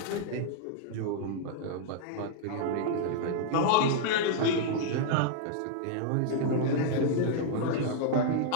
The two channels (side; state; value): both; different; correlation -0.01